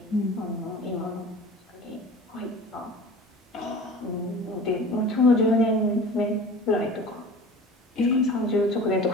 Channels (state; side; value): normal; both; correlation 0.39